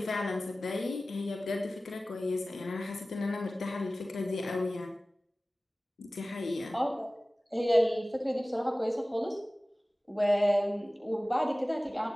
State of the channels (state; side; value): normal; both; correlation 0.97